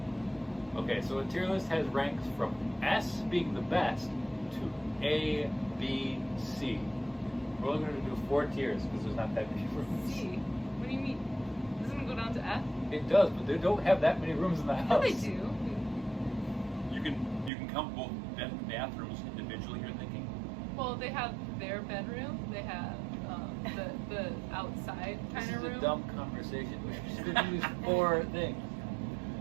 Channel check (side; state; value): left; drops out; at 17.5 s